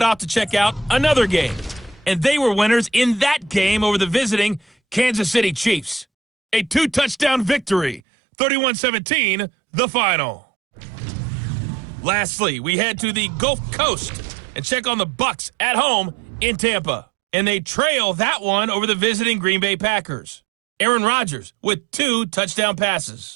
off to check out another game. And they were winners in that game over the visiting Kansas City Chiefs. A 2-touchdown victory, 31-17, the final. Lastly, we head to the Gulf Coast and check on the Bucs at home in Tampa. And they trail that one over the visiting Green Bay Packers. Aaron Rodgers with 2 touchdown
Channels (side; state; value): left; drops out; at 8.0 s